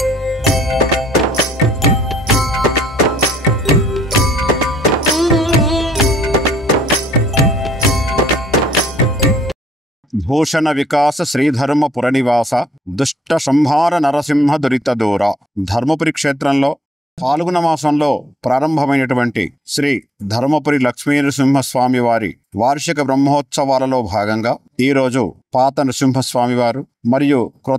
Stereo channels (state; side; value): normal; both; correlation 0.72